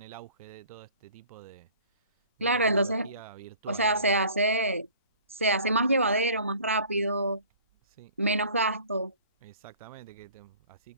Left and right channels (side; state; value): both; inverted; correlation -0.49